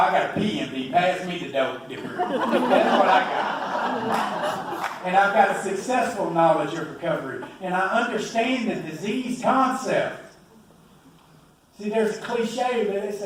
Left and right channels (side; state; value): both; identical; correlation 1.00